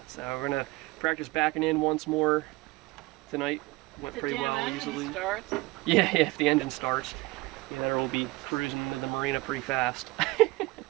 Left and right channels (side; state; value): left; quieter; 22.4 dB